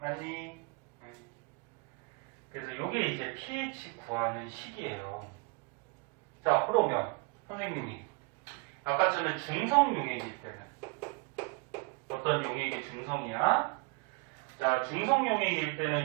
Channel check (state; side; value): quieter; left; 30.5 dB